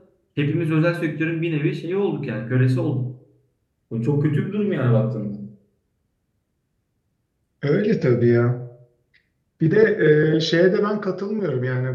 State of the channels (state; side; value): identical; both; correlation 1.00